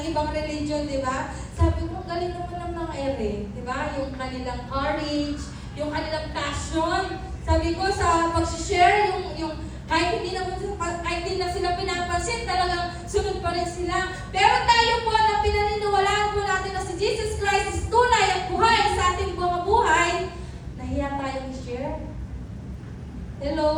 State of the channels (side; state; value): both; identical; correlation 1.00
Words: ibang religion, di ba? Sabi ko, galing naman ng mga ere. Di ba? Yung kanilang courage, yung kanilang passion. Sabi ko, sa pag-share, yung kahit hindi na sila pinapansin, talagang sunod pa rin sila. Pero tayo po na pinaniniwalaan po natin na si Jesus Christ is tunay at buhay sa ating mga buhay, nahiya tayong i-share.